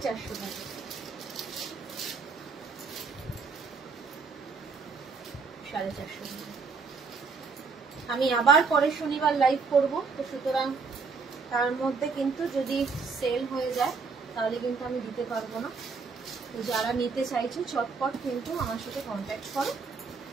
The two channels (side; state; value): left; quieter; 4.9 dB